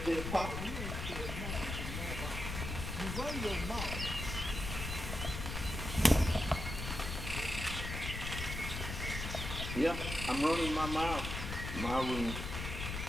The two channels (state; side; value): noise; left; rumble, 5 dB below the sound